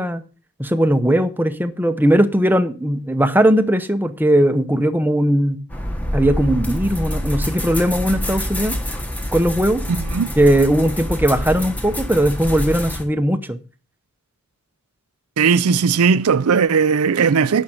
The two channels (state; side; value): normal; both; correlation 0.70